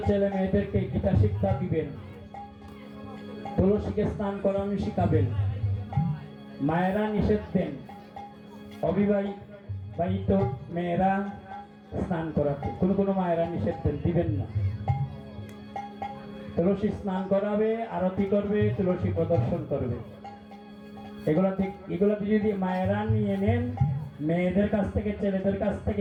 ছেলে মেয়েদেরকে গীতা শিক্ষা দিবেন, তুলসীকে স্নান করানো শিখাবেন, মায়েরা নিষেধ দেন অবিবাহিত মেয়েরা স্নান করাতে, কোনো মায়েরা নিষেধ দেন, দিবেন না। তুলসী স্নান করাবে, আরতি করবে, তুলসী প্রদর্শন করবে। এগুলাতে যদি মায়েরা নিয়ে নেন, মেয়েদের কাছ থেকে ছেলেদের কাছ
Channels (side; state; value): both; identical; correlation 1.00